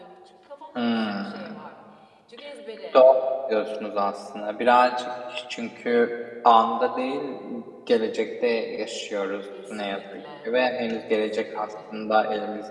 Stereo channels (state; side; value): identical; both; correlation 1.00